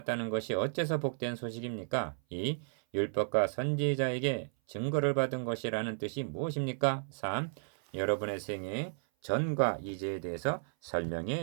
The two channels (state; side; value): silent; left; 55 dB below the other